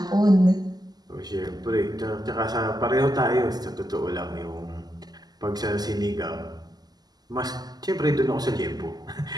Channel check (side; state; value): left; late; 0.20 ms